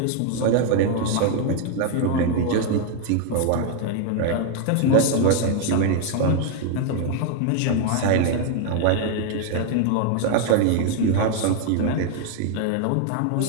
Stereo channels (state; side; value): different; both; correlation 0.00